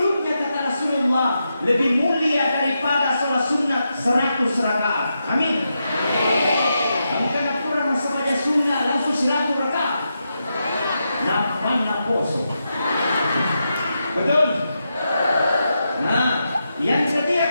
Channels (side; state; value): both; inverted; correlation -0.86